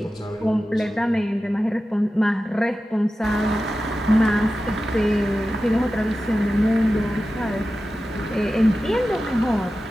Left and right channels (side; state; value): both; normal; correlation 0.93